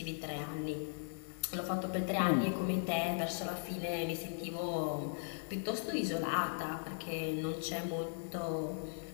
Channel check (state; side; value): silent; right; digital silence